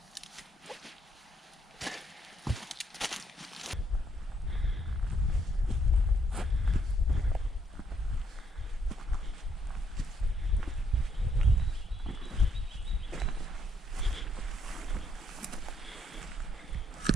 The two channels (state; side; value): normal; both; correlation 0.72